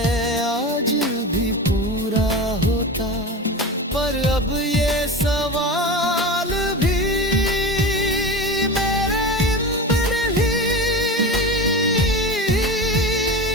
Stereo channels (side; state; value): both; normal; correlation 0.27